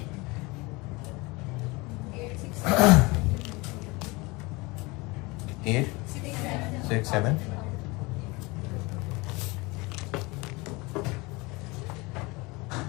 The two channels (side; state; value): right; quieter; 24.6 dB